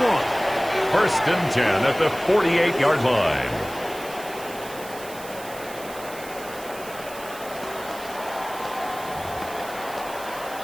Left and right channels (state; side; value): noise; right; hiss, 15 dB below the sound